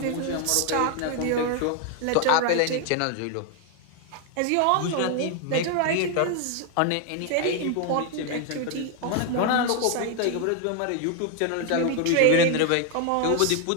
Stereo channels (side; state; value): both; different; correlation 0.01